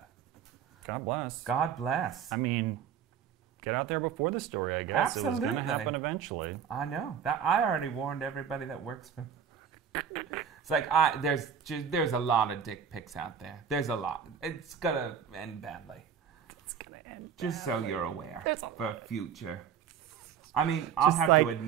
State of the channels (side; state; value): left; quieter; 7.8 dB